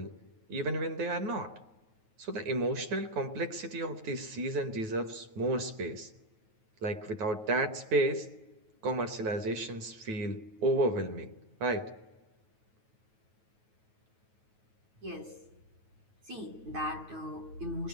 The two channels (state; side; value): late; left; 9.2 ms